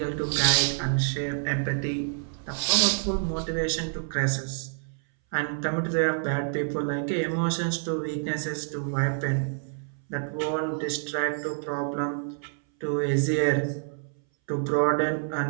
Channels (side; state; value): left; silent; 60 dB below the other